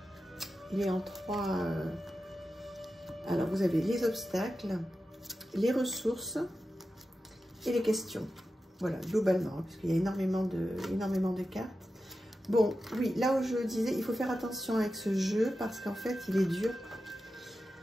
Il est en 3. Alors, vous avez les obstacles, les ressources et les questions. Voilà, globalement, parce qu'il y a énormément de cartes. Bon, oui, là où je disais, il faut faire attention avec ce jeu parce qu'en fait, il est dur.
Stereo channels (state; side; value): normal; both; correlation 0.92